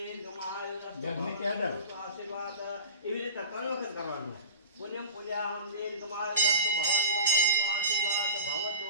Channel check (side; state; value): both; inverted; correlation -0.32